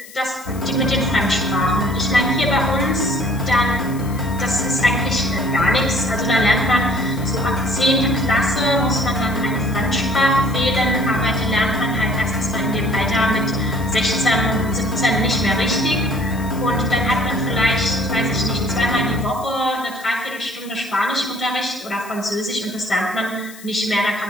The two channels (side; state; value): left; noise; hiss, 19 dB below the sound